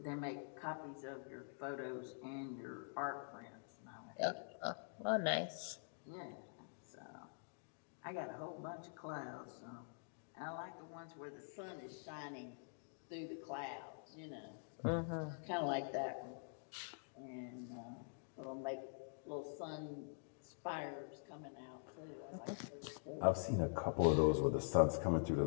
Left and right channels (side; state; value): right; silent; digital silence